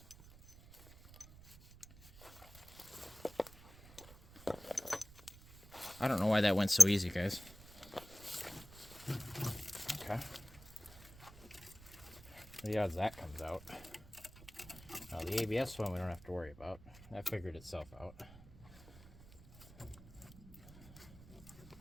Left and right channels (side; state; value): right; noise; rumble, 20 dB below the sound